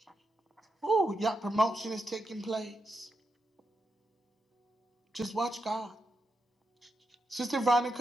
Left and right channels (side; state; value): both; normal; correlation 0.85